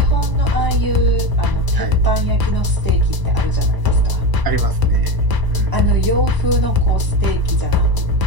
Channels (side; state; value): left; late; 1.0 ms